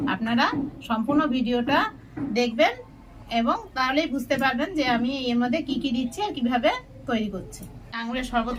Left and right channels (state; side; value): identical; both; correlation 1.00